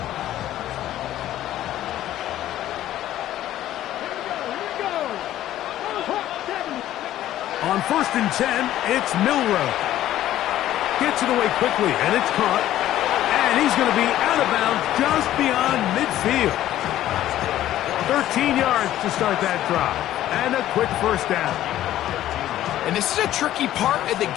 On first and 10, it's Milroe. Gets it away quickly, and it's caught. And he's going to be out of bounds just beyond midfield. 13 yards to start that drive. And a quick first down. And this is a tricky part of the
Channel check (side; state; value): right; quieter; 13.2 dB